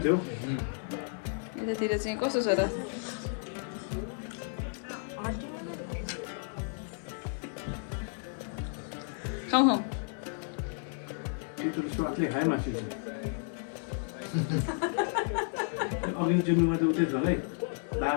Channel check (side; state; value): right; silent; 56 dB below the other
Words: थियो यतातिर चाहिँ कस्तो छ त खाउँ स्वादले खायो मासु अघि चिन्नुमा त उतै छ है